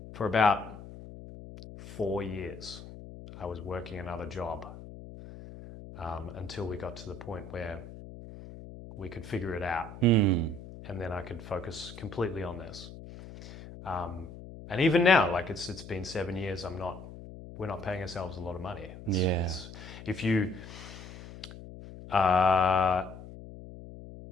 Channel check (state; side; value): noise; left; hum, 14 dB below the sound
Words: for about 4 years. I was working another job until we got to the point where we could figure it out, and then I could focus completely on this. And even now, like it's been 7 years. We're not paying ourselves a lot of money. If